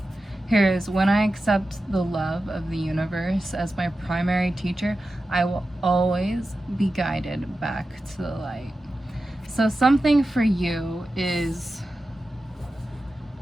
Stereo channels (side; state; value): both; normal; correlation 0.92